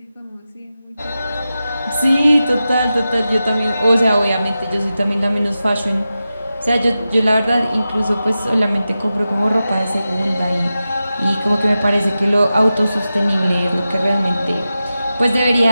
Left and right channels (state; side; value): inverted; both; correlation -0.93